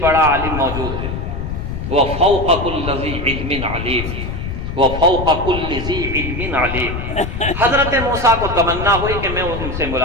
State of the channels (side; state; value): left; noise; rumble, 5 dB below the sound